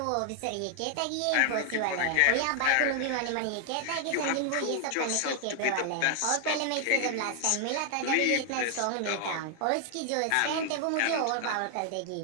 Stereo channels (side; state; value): both; different; correlation 0.00